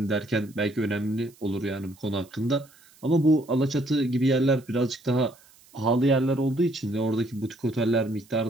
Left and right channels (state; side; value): noise; right; hiss, 28 dB below the sound